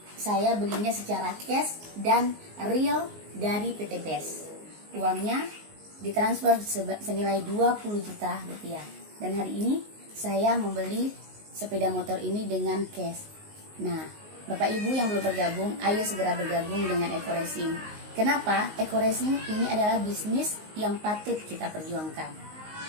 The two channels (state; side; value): late; left; 19 ms